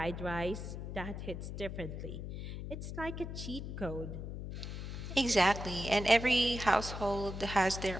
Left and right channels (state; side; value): noise; left; hum, 7 dB below the sound